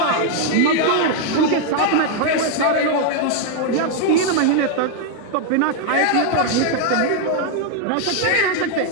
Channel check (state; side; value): different; both; correlation 0.00